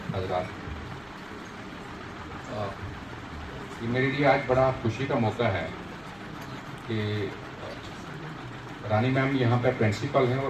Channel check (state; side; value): noise; left; hum, 27 dB below the sound